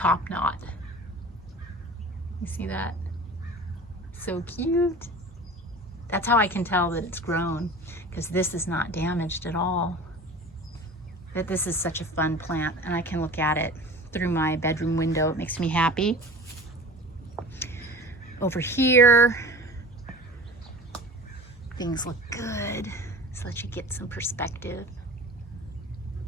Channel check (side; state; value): both; normal; correlation 0.39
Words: knot. You see that? So cute. That's how I can tell that it's grown, because this is not damaged at all. But this is such a fun plant, and I can look at it through my bedroom window. It makes me happy. Over here, things look good. Just let you get some perspective.